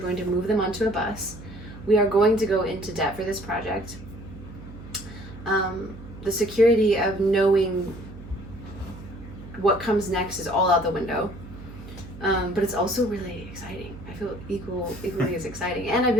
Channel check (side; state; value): right; noise; hum, 15 dB below the sound